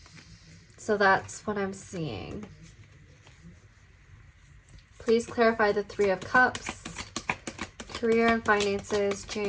So that's what I'm seeing. Please clarify the 3 of Cups, career and finances,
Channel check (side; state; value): both; identical; correlation 1.00